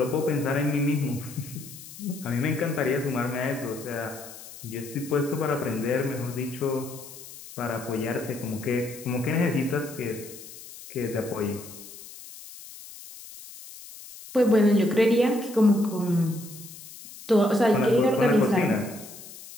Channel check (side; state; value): left; noise; hiss, 16 dB below the sound